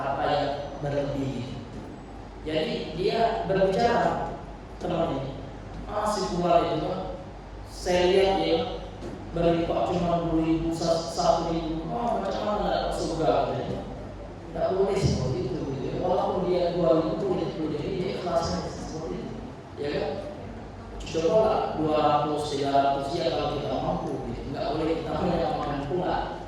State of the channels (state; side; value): identical; both; correlation 1.00